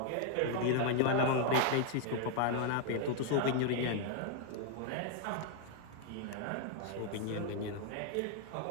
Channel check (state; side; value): different; both; correlation 0.00